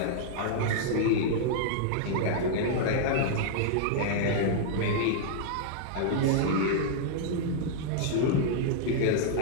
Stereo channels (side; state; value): both; different; correlation -0.01